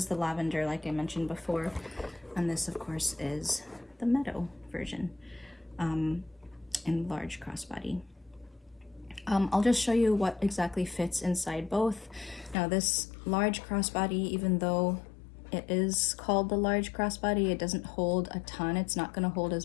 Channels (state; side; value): drops out; right; at 12.6 s